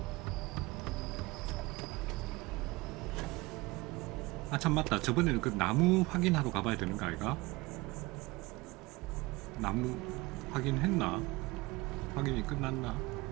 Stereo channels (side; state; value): left; quieter; 22.3 dB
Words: 아 참 맞다. 저번에는 그 나무 확인하러 가봐야 되는 거 아이가? 나무 확인했나? 확인이 끝났나?